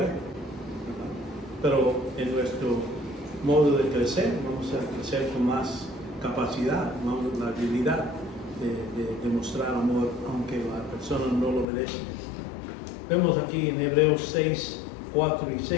¿verdad? Pero en nuestro modo de crecer, vamos a crecer con más capacidad, la habilidad de demostrar amor, aunque la persona no lo obedece. Vemos aquí en Hebreos 6, 4 y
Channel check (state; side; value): drops out; right; at 11.7 s